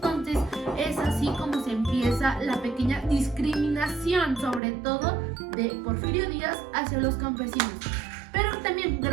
es así como se empieza la pequeña discriminación, sobre todo de Porfirio Díaz hacia los campesinos. Pero también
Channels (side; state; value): left; drops out; at 4.6 s